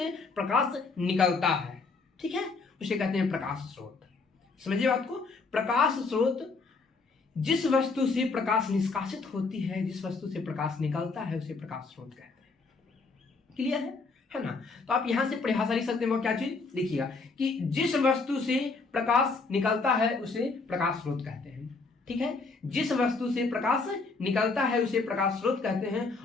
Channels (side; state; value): right; quieter; 4.1 dB